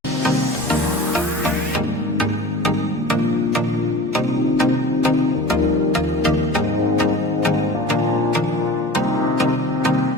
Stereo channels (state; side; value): normal; both; correlation 0.38